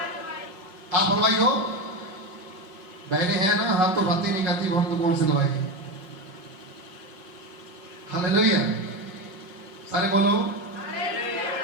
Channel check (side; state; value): left; late; 5.3 ms